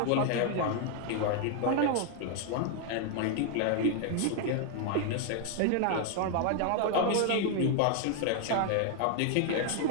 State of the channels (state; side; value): different; both; correlation 0.00